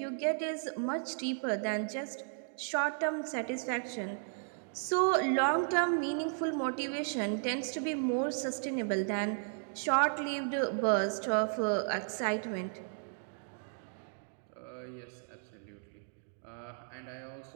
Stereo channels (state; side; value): silent; left; digital silence